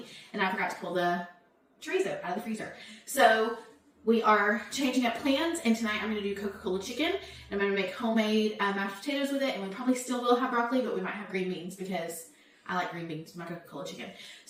and I forgot to pull the chorizo out of the freezer. So we are changing up plans and tonight I'm going to do Coca-Cola chicken. I'm going to make homemade mashed potatoes with it and we probably still will have broccoli, but we might have green beans because I like green beans in my Coca-Cola chicken.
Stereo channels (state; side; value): identical; both; correlation 1.00